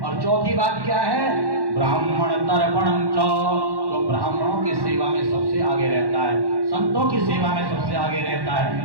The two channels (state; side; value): late; left; 1.1 ms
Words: चौथी बात क्या है? ब्राह्मण तर्पणम च, तो ब्राह्मणों की सेवा में सबसे आगे रहता है, संतों की सेवा में सबसे आगे रहता